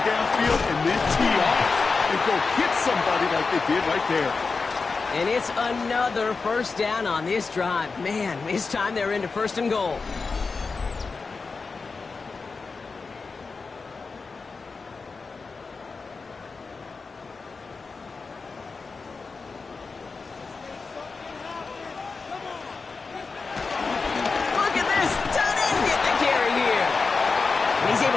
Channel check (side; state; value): right; quieter; 4.4 dB